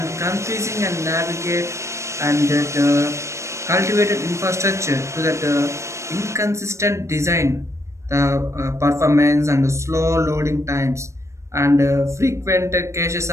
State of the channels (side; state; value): left; late; 0.14 ms